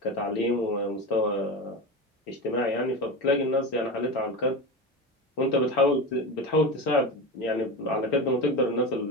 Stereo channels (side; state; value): both; normal; correlation 0.24